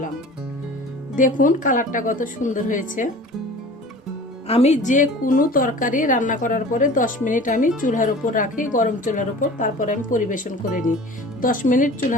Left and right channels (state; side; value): normal; both; correlation 0.41